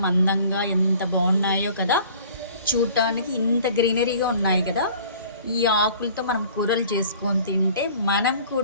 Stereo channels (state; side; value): inverted; both; correlation -0.50